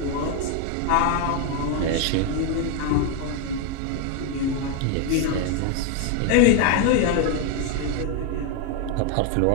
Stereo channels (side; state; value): both; different; correlation 0.01